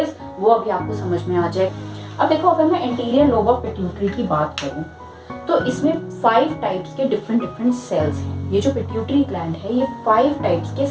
वो अभी आपको समझ में आ जाए। अब देखो, अगर मैं एंटीरियर लोब ऑफ पिट्यूटरी की बात करूं, तो इसमें 5 टाइप्स के डिफरेंट डिफरेंट सेल्स हैं। ये जो पिट्यूटरी ग्लैंड है ये 5 टाइप्स के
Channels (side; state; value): both; identical; correlation 1.00